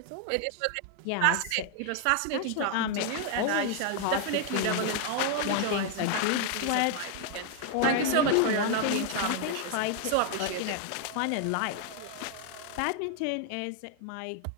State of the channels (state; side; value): different; both; correlation 0.00